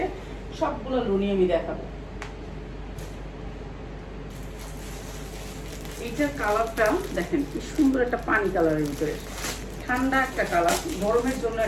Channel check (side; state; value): both; identical; correlation 1.00